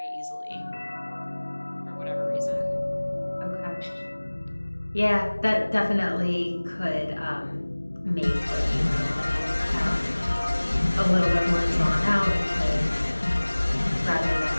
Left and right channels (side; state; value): both; inverted; correlation -1.00